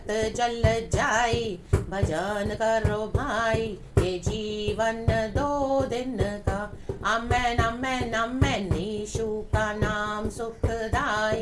जल जाए, भजन करो भाई, ये जीवन 2 दिन का। आमेन आमेन आमेन। यीशु का नाम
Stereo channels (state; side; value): identical; both; correlation 1.00